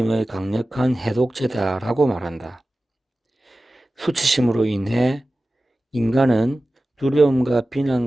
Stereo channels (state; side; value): normal; both; correlation 0.96